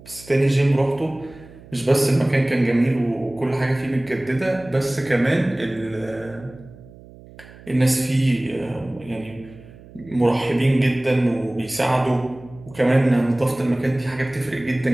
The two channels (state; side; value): noise; right; hum, 21 dB below the sound